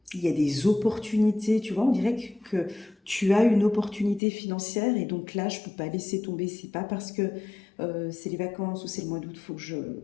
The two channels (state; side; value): drops out; right; at 4.2 s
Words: il y a des opportunités, tu vois, on dirait que tu as une opportunité financière, et donc là, je ne peux pas laisser tomber. C'est pas parce que c'est les vacances ou c'est le mois d'août,